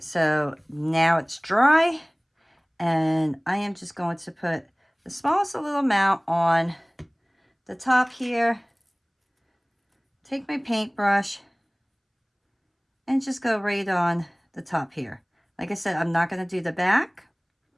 so now it's dry, and I am just going to put the smallest little amount on the top here. Take my paintbrush and just go right on the top here. Like I said, I'm not going to do the back.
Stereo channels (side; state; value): both; identical; correlation 1.00